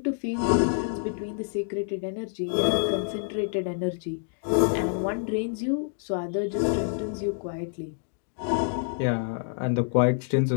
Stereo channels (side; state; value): right; silent; digital silence